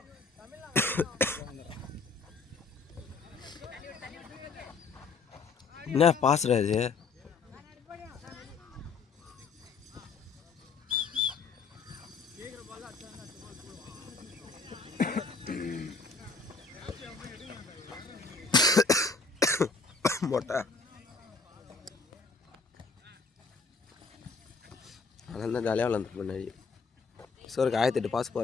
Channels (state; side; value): quieter; right; 4.6 dB